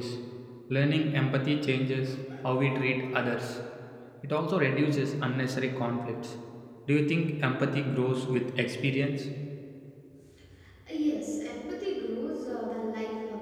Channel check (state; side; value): identical; both; correlation 1.00